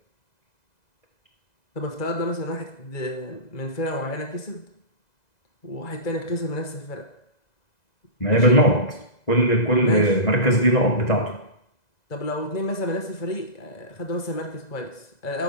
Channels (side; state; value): right; late; 2.0 ms